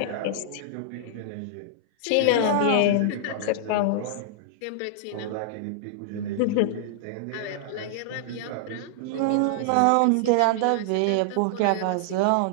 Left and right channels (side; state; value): both; different; correlation -0.01